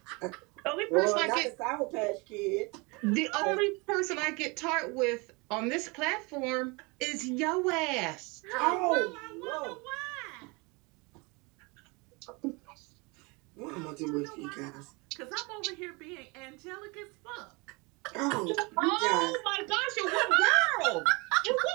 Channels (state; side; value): quieter; left; 27.9 dB